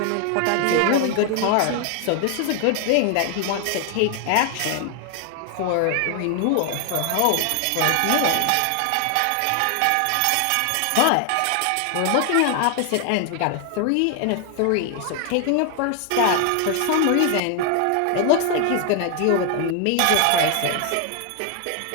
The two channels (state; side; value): different; both; correlation 0.00